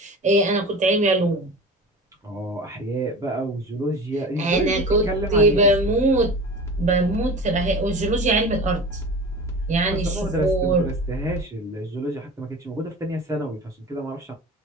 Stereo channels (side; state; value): both; normal; correlation 0.34